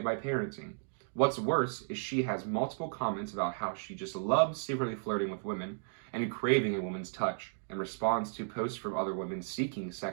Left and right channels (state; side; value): silent; left; digital silence